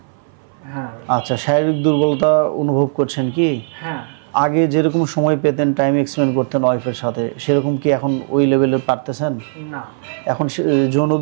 হ্যাঁ। আচ্ছা, শারীরিক দুর্বলতা অনুভব করছেন কি? হ্যাঁ। আগে যেরকম সময় পেতেন, টাইম এক্সপেন্ড করতেন ওয়াইফের সাথে, সেরকম কি এখন ওই লেভেলে পারতেছেন? না। এখন যৌন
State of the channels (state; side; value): silent; left; 59 dB below the other